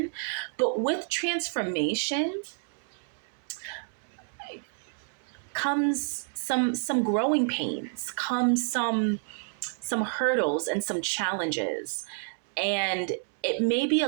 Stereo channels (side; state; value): left; silent; 58 dB below the other